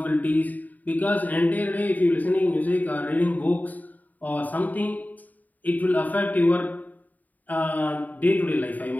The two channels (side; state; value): right; late; 0.079 ms